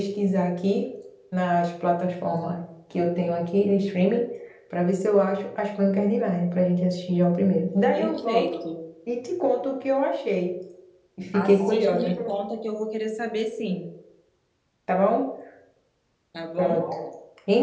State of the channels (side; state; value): both; identical; correlation 1.00